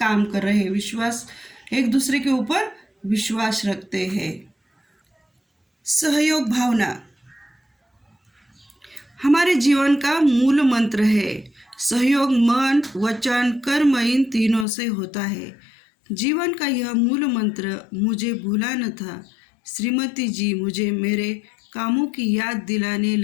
कर रहे हैं, विश्वास, एक दूसरे के ऊपर विश्वास रखते हैं। सहयोग भावना हमारे जीवन का मूल मंत्र है। सहयोग मन, वचन, कर्म इन तीनों से होता है। जीवन का यह मूल मंत्र मुझे भूला न था। श्रीमती जी मुझे मेरे कामों की याद दिलाने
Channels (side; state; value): right; drops out; at 14.7 s